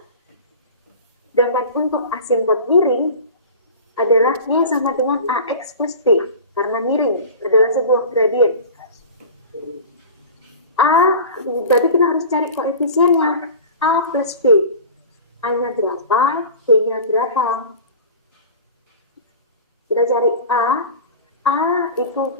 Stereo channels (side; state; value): both; inverted; correlation -0.36